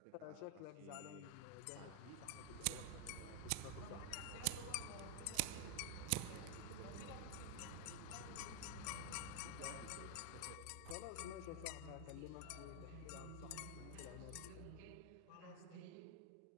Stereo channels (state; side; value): different; both; correlation 0.00